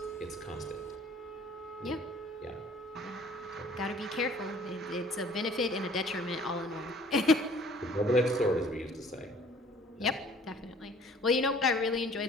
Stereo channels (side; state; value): both; normal; correlation 0.53